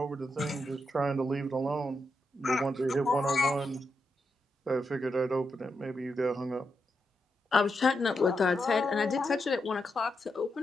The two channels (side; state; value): both; normal; correlation 0.85